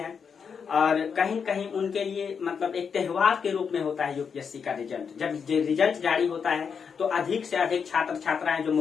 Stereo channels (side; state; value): right; quieter; 6.4 dB